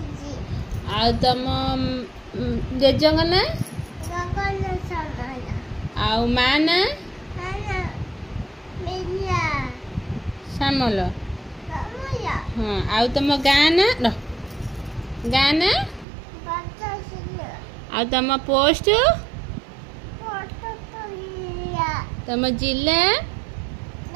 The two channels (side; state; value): left; drops out; at 16.1 s